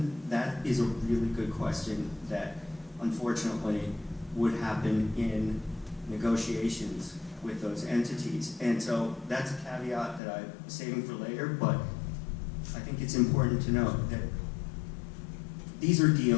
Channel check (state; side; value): drops out; right; at 10.2 s